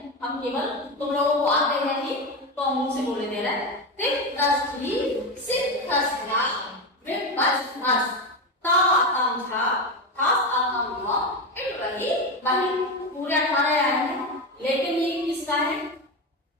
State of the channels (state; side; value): normal; both; correlation 0.16